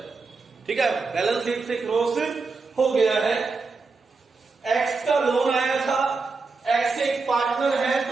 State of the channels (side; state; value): left; quieter; 4.2 dB